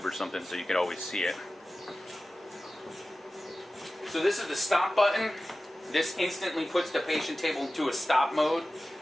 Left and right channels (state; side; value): normal; both; correlation 0.95